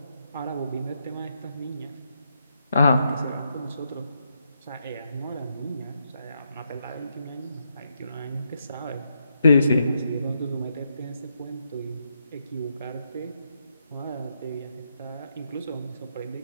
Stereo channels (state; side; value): inverted; both; correlation -0.80